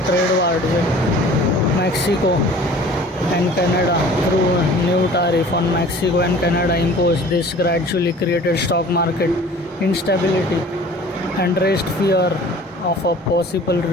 war with Mexico and Canada through a new tariff on Mexico and Canada imposed. This gradually created stock market instability and raised fear of a possible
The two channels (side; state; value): both; normal; correlation 0.46